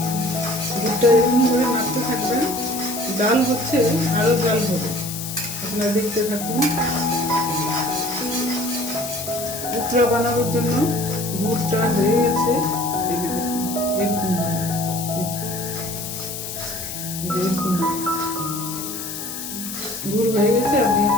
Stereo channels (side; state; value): left; noise; hiss, 7 dB below the sound